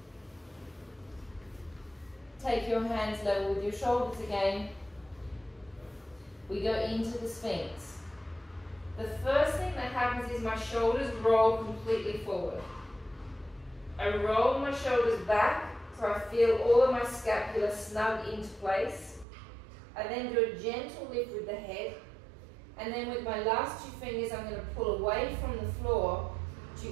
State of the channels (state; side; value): drops out; left; at 19.2 s